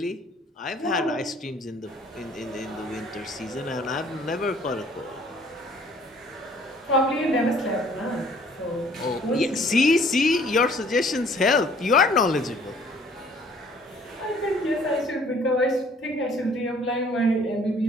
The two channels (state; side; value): normal; both; correlation 0.57